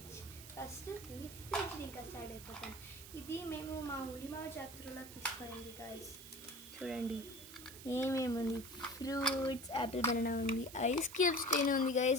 ఫస్ట్ మీ ఫ్రిడ్జ్ ఇంకా స్టార్ట్ అయిపోతాం. ఇది మేము మా ఉలిమావ జాతరలో తీసుకునింది గాయ్స్. చూడండి ఏమేమి ఉంది. ఫ్రూట్స్, యాపిల్ బనానా ఉంది, ఐస్ క్యూబ్స్ ట్రైన్ ఉంది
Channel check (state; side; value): noise; right; hiss, 14 dB below the sound